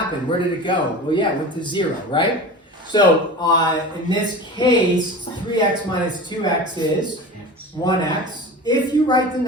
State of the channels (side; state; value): both; normal; correlation 0.33